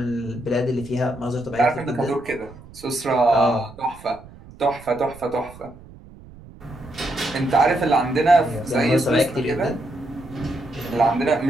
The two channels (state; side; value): noise; right; rumble, 20 dB below the sound